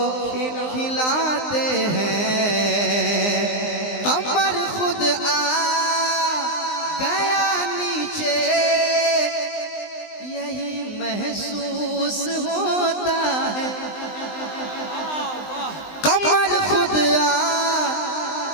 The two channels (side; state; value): right; late; 19 ms